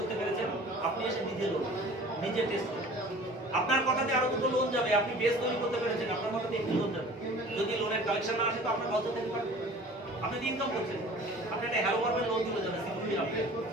পেরেছেন, আপনি এসে নিজের লোন, নিজের টেস্ট করুন। আপনার কথাতে আরো দুটো লোন যাবে, আপনি বেস তৈরি করতে পেরেছেন, আপনার কথাতে একটি লোন যাবে। যদি লোনের কালেকশন না আসে তো আপনার লজ্জা থেকে পারবে, আপনি ইনকাম করছেন, আপনি একটা হ্যালো পারবেন, লোন তুলে যাবে সিকিউরিটি আপনি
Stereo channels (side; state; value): both; normal; correlation 0.45